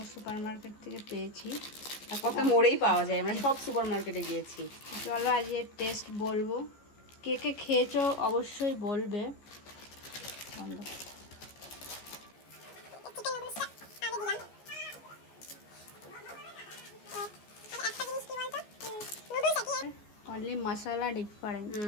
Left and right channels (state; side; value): late; right; 14 ms